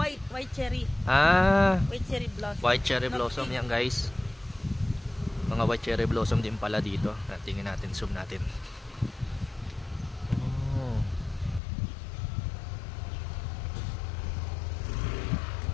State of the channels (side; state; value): right; drops out; at 11.6 s